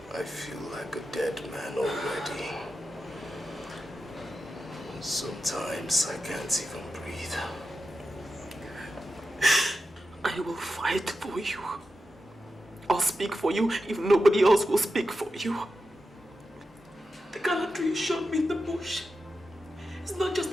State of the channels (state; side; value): normal; both; correlation 0.90